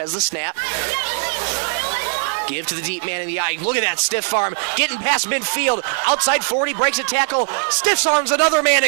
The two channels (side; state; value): left; silent; 66 dB below the other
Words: the snap. Give to the deep man in the eye. Look at that stiff arm. Getting past midfield. Outside 40, breaks a tackle. Stiff arms another man